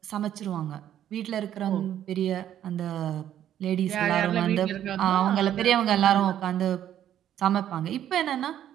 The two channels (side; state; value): left; quieter; 11.0 dB